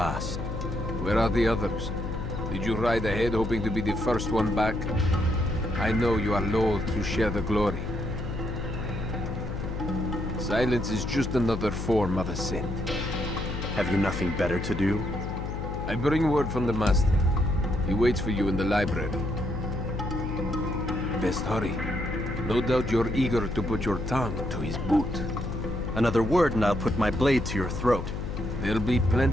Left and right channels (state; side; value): noise; left; hum, 5 dB below the sound